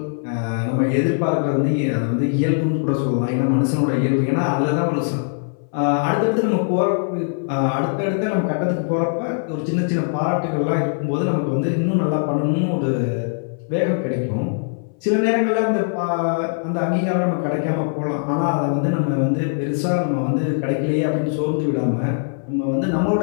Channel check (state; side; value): silent; right; 60 dB below the other